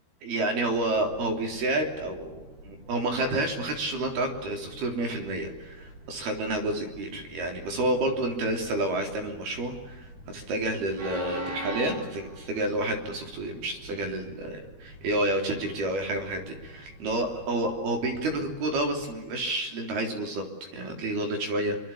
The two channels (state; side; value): late; left; 13 ms